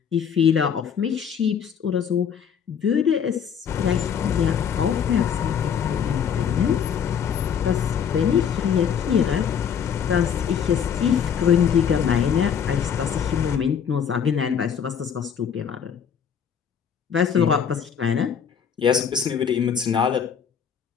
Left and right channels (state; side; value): quieter; right; 7.7 dB